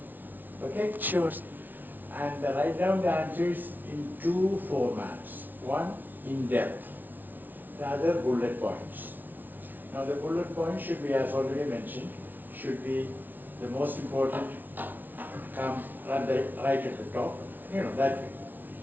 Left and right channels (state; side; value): late; left; 0.085 ms